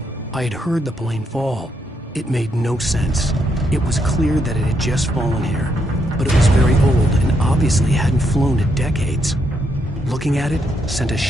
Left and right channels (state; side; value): normal; both; correlation 0.77